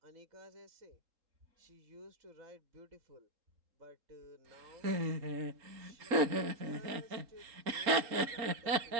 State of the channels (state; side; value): late; left; 3.7 ms